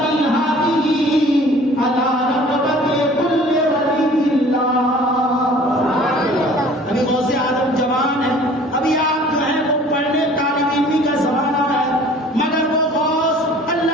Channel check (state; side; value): normal; both; correlation 0.49